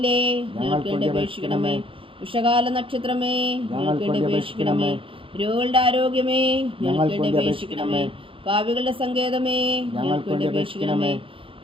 ഞങ്ങൾക്ക് വേണ്ടി അപേക്ഷിക്കണമേ. ഉഷകാല നക്ഷത്രമേ, ഞങ്ങൾക്ക് വേണ്ടി അപേക്ഷിക്കണമേ. രോഗികളുടെ ആരോഗ്യമേ, ഞങ്ങൾക്ക് വേണ്ടി അപേക്ഷിക്കണമേ. പാപികളുടെ സങ്കേതമേ, ഞങ്ങൾക്ക് വേണ്ടി അപേക്ഷിക്കണമേ.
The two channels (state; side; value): late; left; 0.26 ms